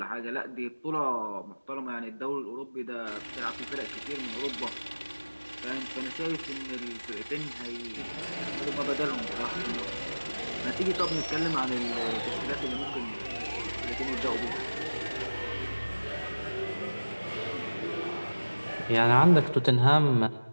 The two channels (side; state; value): both; inverted; correlation -1.00